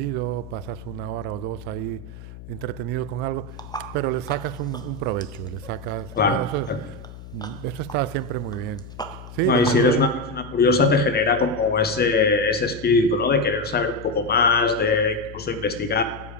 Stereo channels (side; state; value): left; noise; hum, 15 dB below the sound